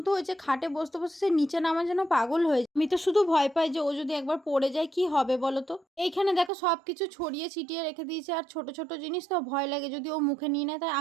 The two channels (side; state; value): left; drops out; at 6.5 s